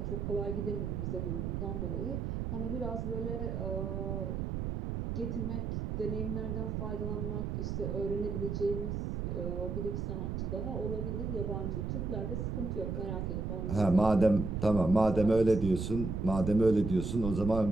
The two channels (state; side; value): noise; right; rumble, 2 dB below the sound